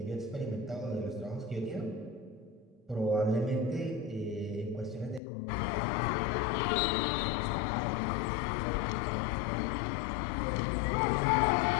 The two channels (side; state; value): right; drops out; at 5.2 s